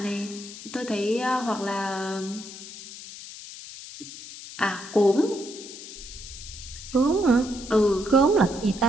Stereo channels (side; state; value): left; noise; hiss, 13 dB below the sound